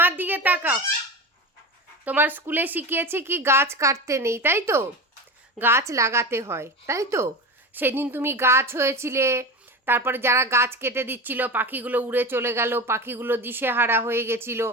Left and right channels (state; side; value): normal; both; correlation 0.26